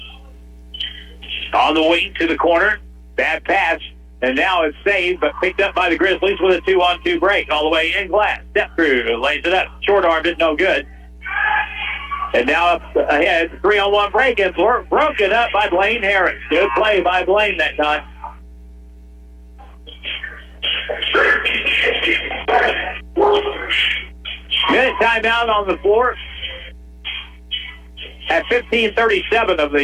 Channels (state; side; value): identical; both; correlation 1.00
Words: On the wing to the corner. Bad pass. And now it's saved, but picked up by the Grizzlies with a 2-on-2 break. All the way in Glass. Step through. Lays it up. Short-armed it. No good. And now up ahead. 3-on-1 break. And broken up by Blaine Harris. Good play by Blaine that time. Minute timeout on the floor. At 15:37 of